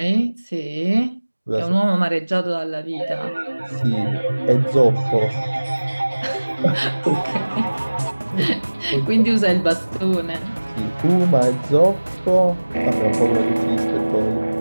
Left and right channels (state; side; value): inverted; both; correlation -1.00